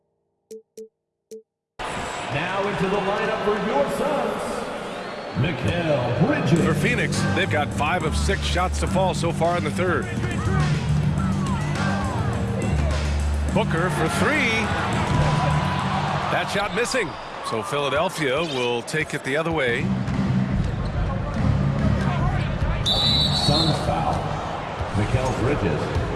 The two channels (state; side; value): identical; both; correlation 1.00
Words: Now into the lineup for your Suns, Mikal Bridges. For Phoenix, they've got 5 of 6 shots to fall so far in the third. Booker for 3. That shot missing. So Philadelphia will take it the other way. Suns foul. Mikal Bridges.